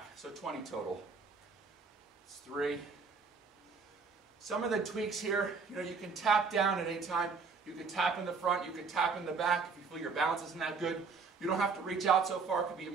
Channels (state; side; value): quieter; left; 4.9 dB